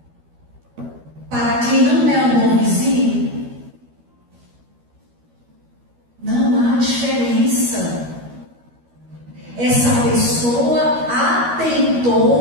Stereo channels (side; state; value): left; late; 12 ms